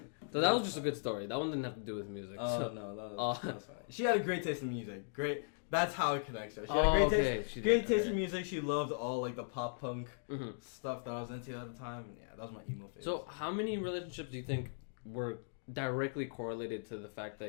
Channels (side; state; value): right; silent; digital silence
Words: that was just a good story. That one didn't have to do with music. Oh, so. no, that was fine. She had a great taste in music. Great. That's how it connects her. She had a great taste in music. She loved all like the pop punk stuff that I was into at the time. And yeah, that was my emo phase. So how many relationships do you think were directly correlated to the fact